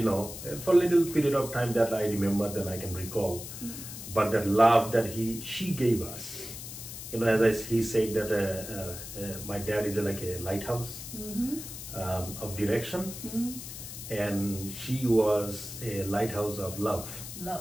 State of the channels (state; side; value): noise; left; hiss, 10 dB below the sound